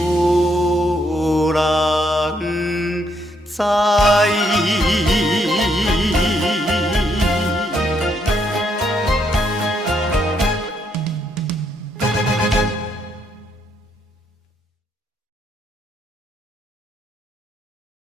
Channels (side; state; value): both; normal; correlation 0.74